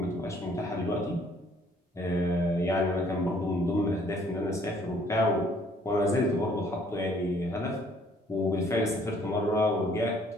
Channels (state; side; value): normal; both; correlation 0.61